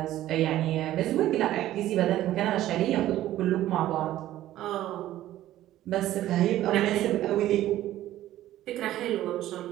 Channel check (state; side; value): quieter; left; 13.9 dB